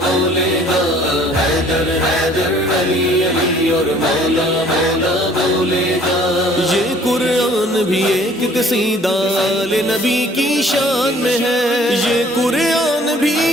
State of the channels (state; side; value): normal; both; correlation 0.56